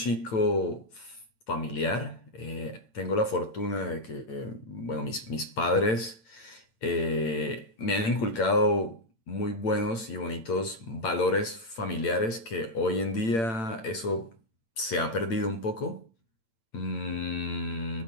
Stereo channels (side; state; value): right; late; 8.9 ms